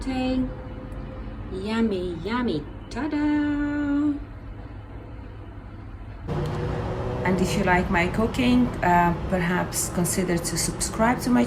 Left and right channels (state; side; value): identical; both; correlation 1.00